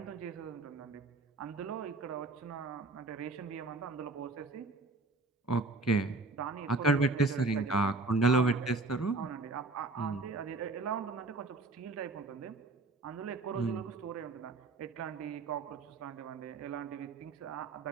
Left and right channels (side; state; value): left; quieter; 3.4 dB